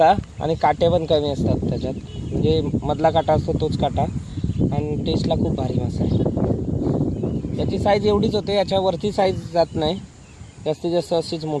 आणि काटे पण कमी असतात त्याच्यात, म्हणजे मधला काटा असतो तोच काटा, आणि टेस्टला खूप भारी मासा आहे. याची साईज एवढीच होते, याच्यावरती साईज जात नाही, जास्तीत जास्त अशीच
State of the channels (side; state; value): both; identical; correlation 1.00